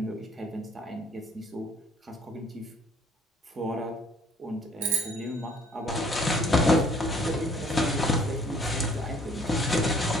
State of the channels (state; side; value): normal; both; correlation 0.58